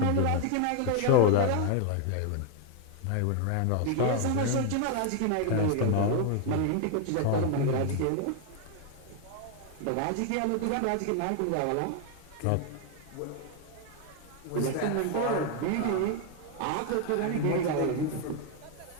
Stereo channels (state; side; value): different; both; correlation 0.00